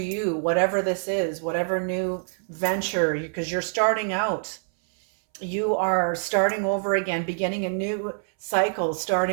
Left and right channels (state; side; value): silent; left; 61 dB below the other